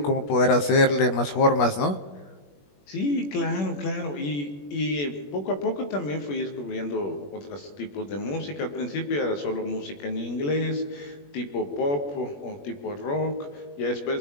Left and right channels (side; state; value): right; late; 21 ms